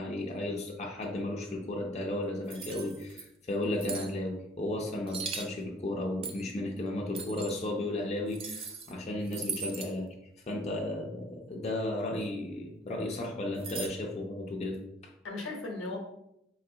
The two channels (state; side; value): normal; both; correlation 0.56